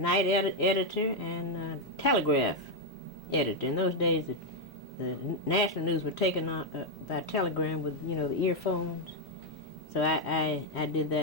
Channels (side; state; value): both; normal; correlation 0.01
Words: editor and telegraph editor. In those days, the national news were taken on by telegram with, the earphones. So I did